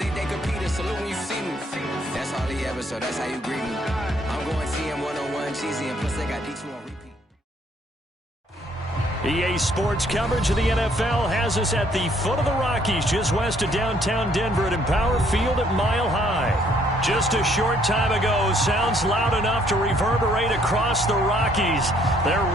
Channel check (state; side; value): normal; both; correlation 0.65